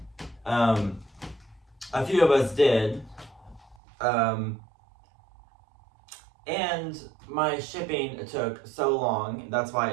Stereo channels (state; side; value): drops out; left; at 3.8 s